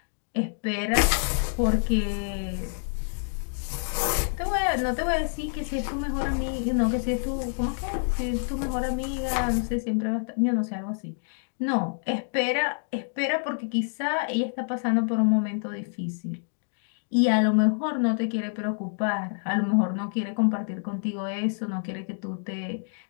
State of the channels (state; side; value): silent; right; digital silence